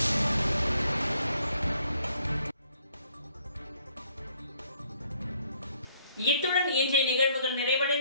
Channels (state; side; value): inverted; both; correlation -0.65